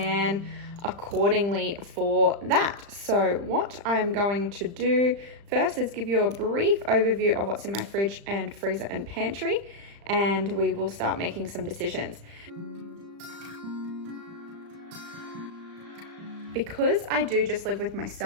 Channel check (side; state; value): left; late; 35 ms